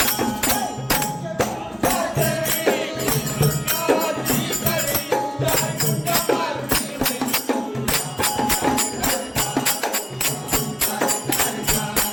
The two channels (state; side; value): identical; both; correlation 1.00